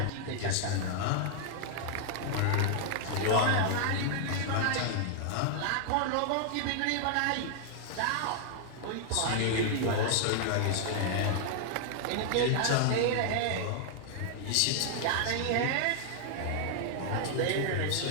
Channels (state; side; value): different; both; correlation -0.01